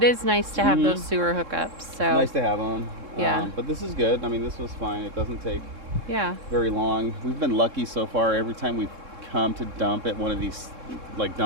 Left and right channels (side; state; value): left; late; 3.7 ms